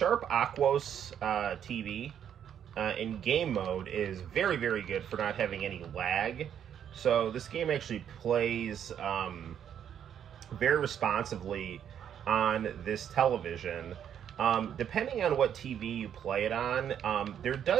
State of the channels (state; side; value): quieter; left; 9.1 dB